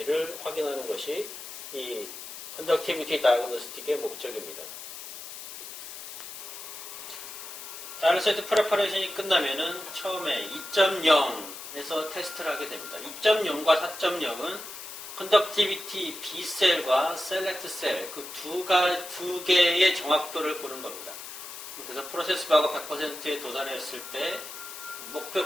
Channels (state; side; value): noise; left; hiss, 11 dB below the sound